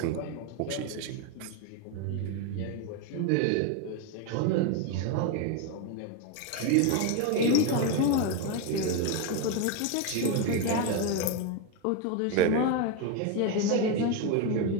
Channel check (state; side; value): different; both; correlation 0.02